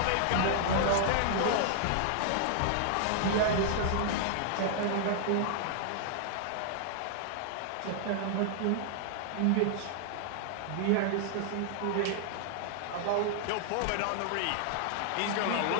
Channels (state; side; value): different; both; correlation -0.01